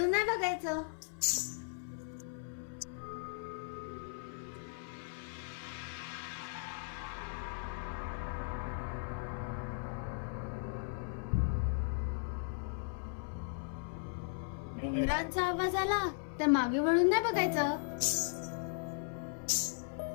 नाही बघायचं. घुंगरांचा आवाज आला तर मागे वळून नाही बघायचं.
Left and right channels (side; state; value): right; silent; 53 dB below the other